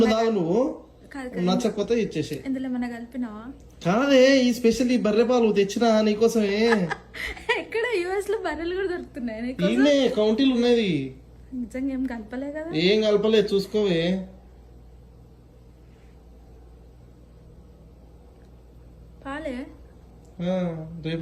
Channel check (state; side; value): identical; both; correlation 1.00